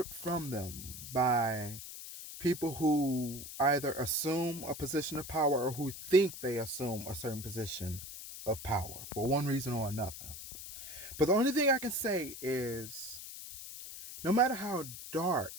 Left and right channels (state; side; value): noise; left; hiss, 11 dB below the sound